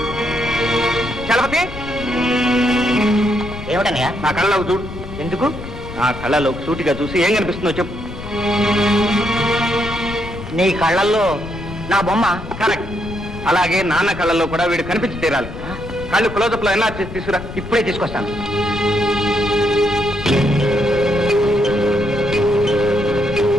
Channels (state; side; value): noise; left; rumble, 11 dB below the sound